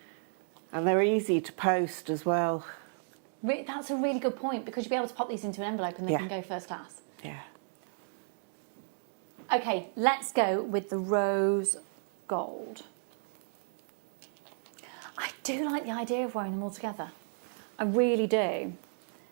And they're easy to post as well. That's a really good point, because you'll be able to pop these into an envelope and they can go first class. Yeah. Okay, let's go with the rose gold. I do like the idea of wearing them all together. I really do.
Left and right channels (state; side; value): silent; left; 56 dB below the other